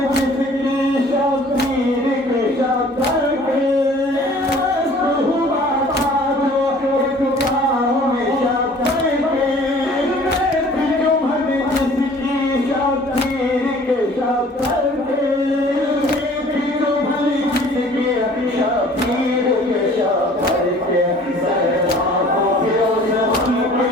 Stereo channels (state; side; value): normal; both; correlation 0.51